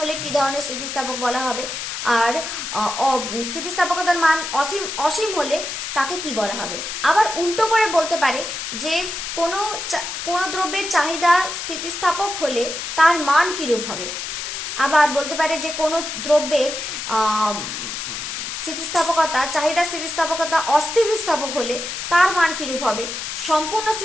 হলে কি ধরনের স্থিতিস্থাপক বলা হবে, আর স্থিতিস্থাপকতার মান অসীম হলে তাকে কি বলা হবে। আবার উল্টো করে বলতে পারে যে কোন দ্রব্যের চাহিদা স্থিতিস্থাপক হলে তার মান কিরূপ হবে। আবার বলতে পারে যে কোন দ্রব্যের চাহিদা স্থিতিস্থাপকতা অস্থিতিস্থাপক হলে তার মান কিরূপ হবে, সম্পূর্ণ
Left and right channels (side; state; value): left; noise; hiss, 5 dB below the sound